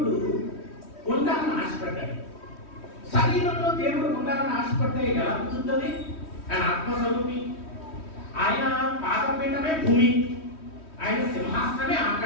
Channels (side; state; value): right; late; 3.1 ms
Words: ఉండాలని ఆశపడ్డాడు. శరీరంలో దేవుడు ఉండాలని ఆశపడితే ఎలా కుదురుతుంది? ఆయన ఆత్మస్వరూపి, ఆయన పాదపీఠమే భూమి, ఆయన సింహాసనమే